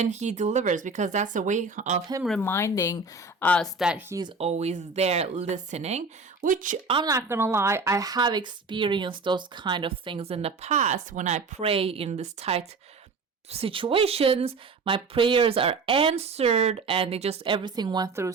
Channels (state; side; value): quieter; left; 4.0 dB